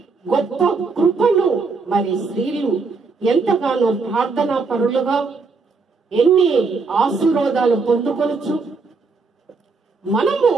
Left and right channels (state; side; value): quieter; left; 4.4 dB